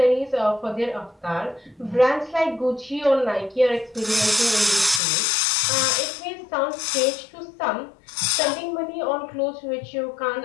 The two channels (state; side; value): drops out; right; at 5.0 s